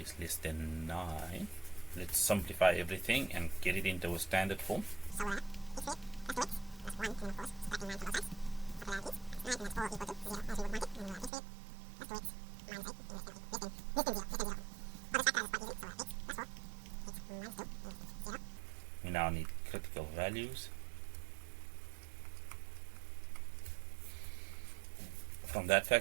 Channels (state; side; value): drops out; left; at 11.3 s